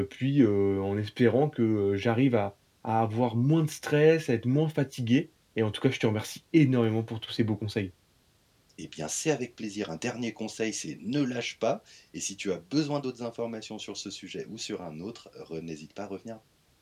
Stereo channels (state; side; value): identical; both; correlation 1.00